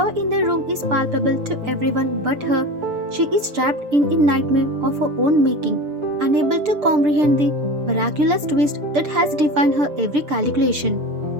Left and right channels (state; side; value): late; left; 6.7 ms